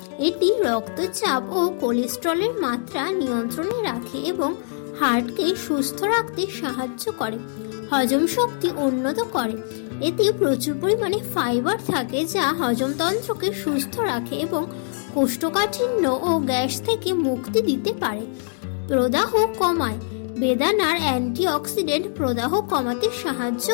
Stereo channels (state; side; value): silent; right; 63 dB below the other